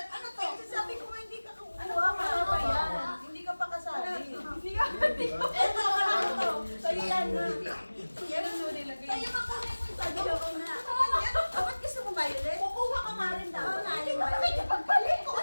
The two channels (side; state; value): both; inverted; correlation -1.00